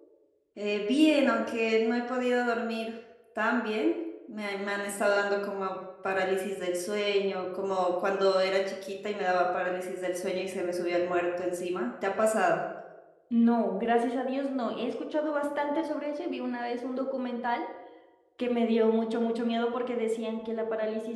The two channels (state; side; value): identical; both; correlation 1.00